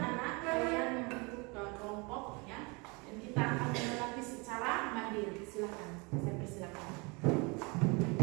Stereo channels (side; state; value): left; quieter; 29.2 dB